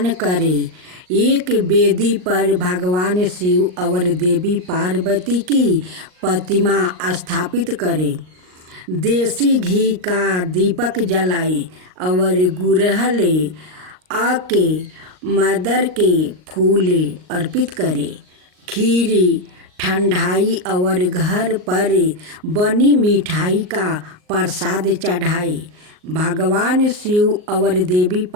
करे। एक वेदी पर भगवान शिव और देवी पार्वती की प्रतिमा स्थापित करे। देसी घी का दीपक जलाए और गुड़हल आके मदर के फूल अर्पित करे। खीरी ठंडाई और घर पर बनी मिठाई का प्रसाद चढ़ाए। भगवान शिव और देवी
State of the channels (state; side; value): late; left; 38 ms